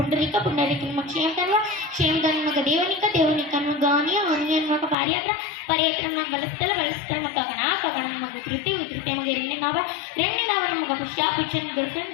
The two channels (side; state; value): right; drops out; at 5.0 s